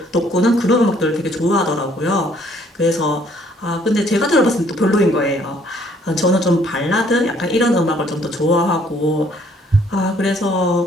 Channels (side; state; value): both; normal; correlation 0.63